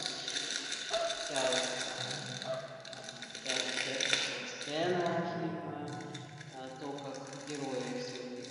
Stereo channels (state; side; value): identical; both; correlation 1.00